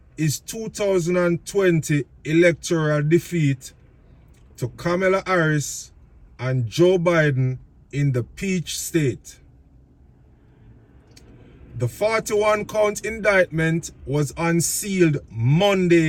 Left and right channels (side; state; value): both; identical; correlation 1.00